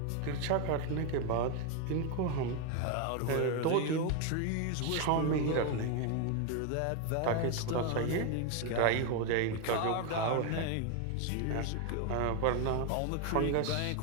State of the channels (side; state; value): both; different; correlation 0.01